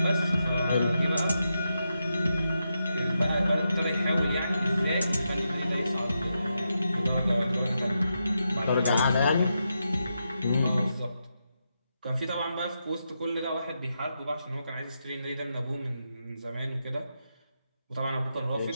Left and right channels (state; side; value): inverted; both; correlation -0.85